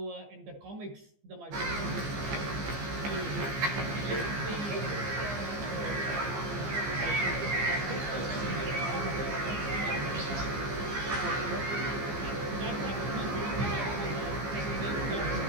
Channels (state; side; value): late; left; 15 ms